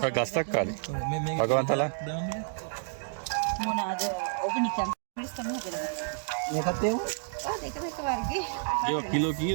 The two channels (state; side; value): silent; left; digital silence